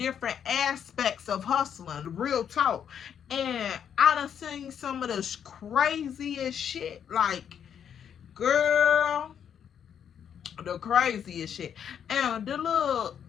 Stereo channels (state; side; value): quieter; right; 8.4 dB